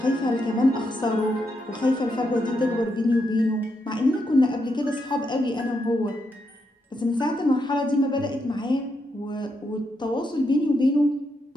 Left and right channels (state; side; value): normal; both; correlation 0.81